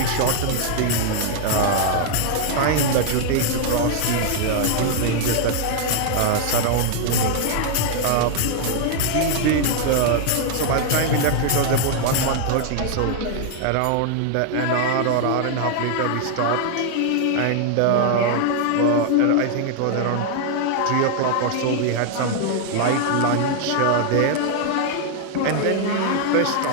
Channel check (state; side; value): different; both; correlation 0.00